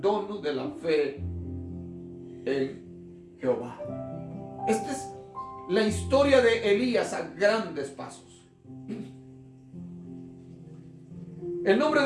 de la fe en Jehová. Esta es la historia de Elías a grandes pasos. El nombre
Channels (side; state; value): both; identical; correlation 1.00